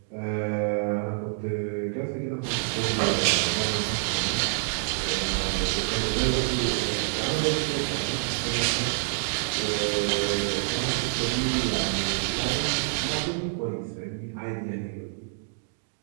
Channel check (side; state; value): left; silent; digital silence